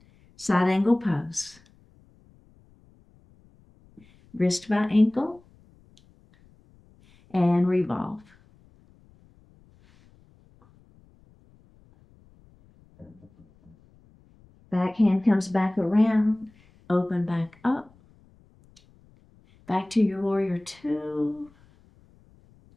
Side angle pose. Wrist by ankle. And revolve. Back hand comes back around, open back up. Back to your warrior 2.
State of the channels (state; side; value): noise; left; rumble, 30 dB below the sound